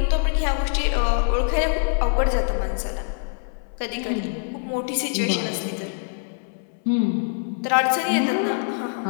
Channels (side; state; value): right; silent; 63 dB below the other